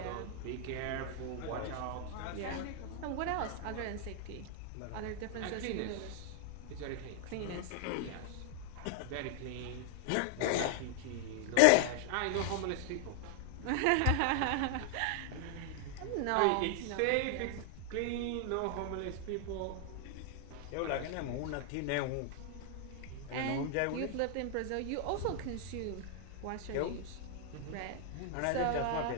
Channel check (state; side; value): different; both; correlation 0.00